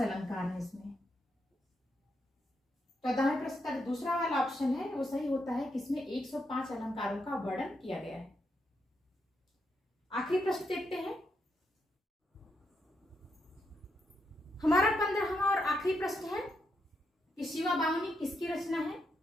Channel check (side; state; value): both; normal; correlation 0.81